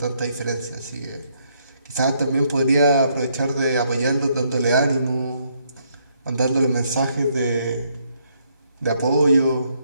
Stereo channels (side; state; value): both; inverted; correlation -0.72